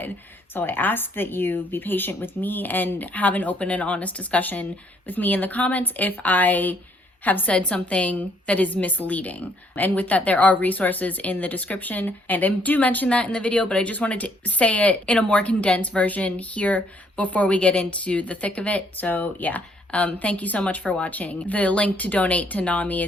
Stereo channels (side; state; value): both; normal; correlation 0.67